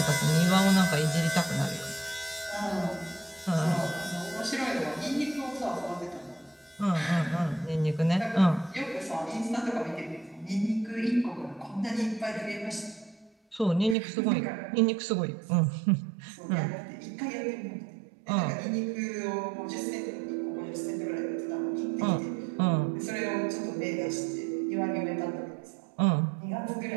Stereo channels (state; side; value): drops out; left; at 14.0 s